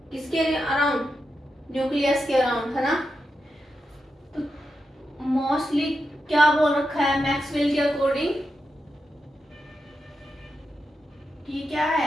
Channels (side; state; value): both; normal; correlation 0.88